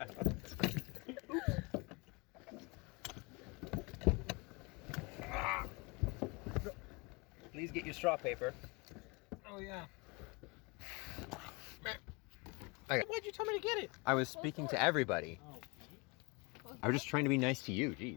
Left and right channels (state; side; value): quieter; right; 28.0 dB